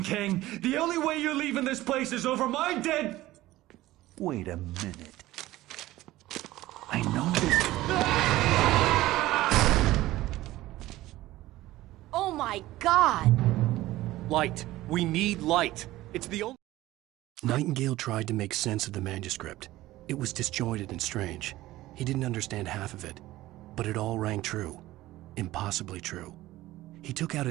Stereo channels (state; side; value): quieter; left; 16.6 dB